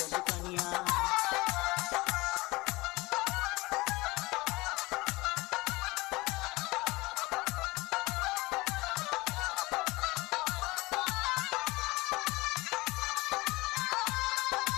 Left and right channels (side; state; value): right; quieter; 22.0 dB